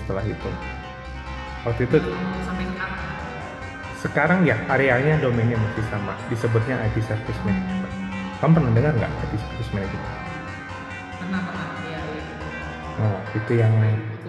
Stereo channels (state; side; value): identical; both; correlation 1.00